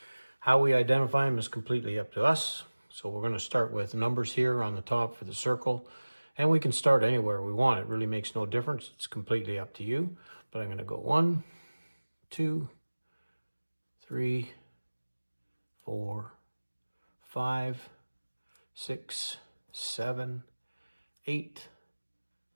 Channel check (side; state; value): both; inverted; correlation -1.00